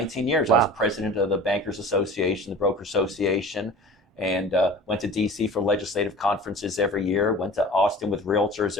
years. Wow. I was president of the Bankers Association, the Broker Association, and went to DC for legislative conferences every year, went to Austin with realtors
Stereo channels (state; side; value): normal; both; correlation 0.41